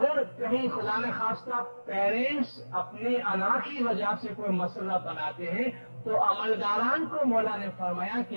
کہیں خدا نہ خواستہ پیرنٹس اپنے انا کی وجہ سے کوئی مسئلہ بناتے ہیں تو عملداران کو مولا نے فرمایا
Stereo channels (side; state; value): both; inverted; correlation -1.00